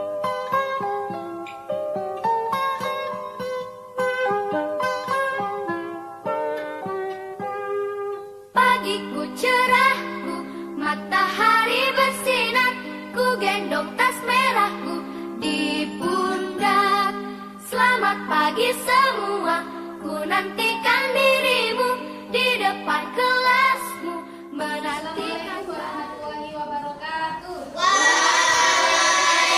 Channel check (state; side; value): identical; both; correlation 1.00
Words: cerahku, matahari bersinar, ku gendong tas merahku di pundak. Selamat pagi semua, ku nantikan dirimu di depan kelasmu, menantikan warahmatullahi wabarakatuh.